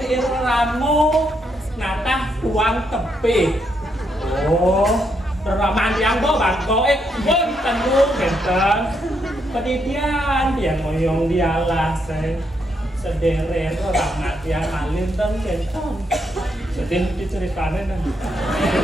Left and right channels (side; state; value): both; normal; correlation 0.77